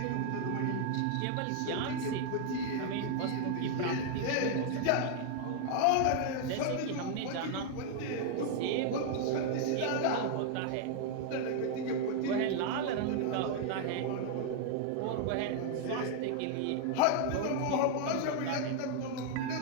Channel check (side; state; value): both; different; correlation 0.00